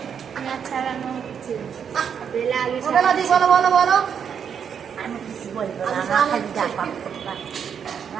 পেঁয়াজ ছাড়ানো হচ্ছে, বেলা আলু বলো বলো বলো। আমি কিছু বলবো না, আমার খালি ডাক,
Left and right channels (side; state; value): left; quieter; 7.6 dB